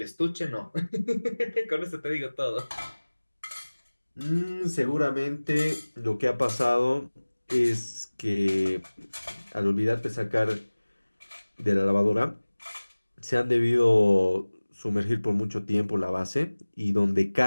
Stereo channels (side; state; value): both; inverted; correlation -1.00